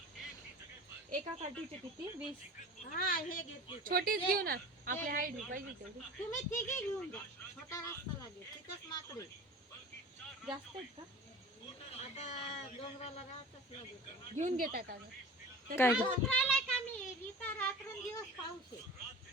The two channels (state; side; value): normal; both; correlation 0.38